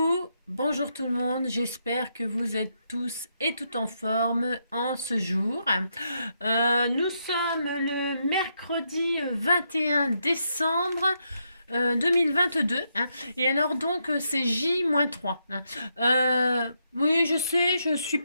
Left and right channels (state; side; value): inverted; both; correlation -0.80